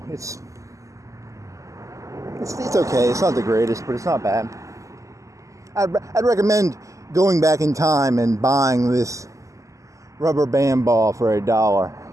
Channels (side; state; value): left; late; 0.16 ms